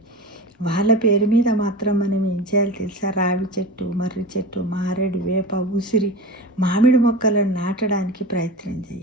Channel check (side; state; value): both; normal; correlation 0.30